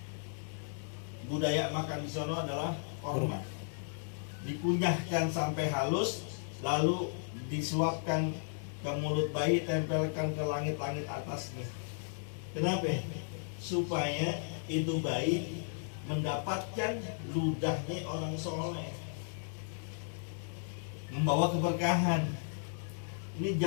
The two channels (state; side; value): silent; right; digital silence